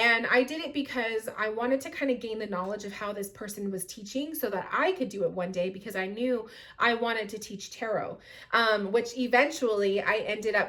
I did it because I wanted to kind of gain the knowledge of how this person was teaching, so that I could do it one day, because I knew I wanted to teach tarot, which eventually I ended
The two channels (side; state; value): both; identical; correlation 1.00